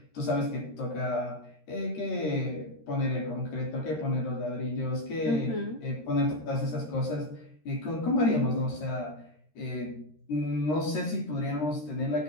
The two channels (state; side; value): late; right; 13 ms